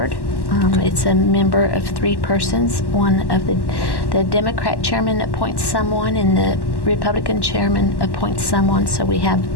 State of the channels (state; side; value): late; right; 1.1 ms